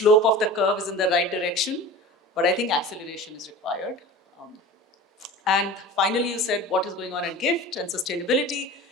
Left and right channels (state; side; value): normal; both; correlation 0.36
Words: of the curve is in the right direction, but I think acceleration is required. And finally, you said what is going on at GIFT and sustainability.